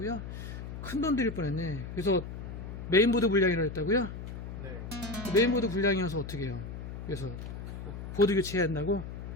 큰 돈 들일 뻔했네. 그래서 메인보드 불량이라고 했다고요? 네. 메인보드 불량이어서 어떻게 해요? 그래서 보드 교체해야 한다고?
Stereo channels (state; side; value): noise; left; hum, 8 dB below the sound